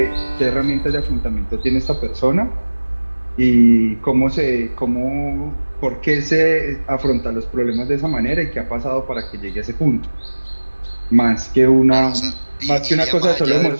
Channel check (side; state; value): both; inverted; correlation -1.00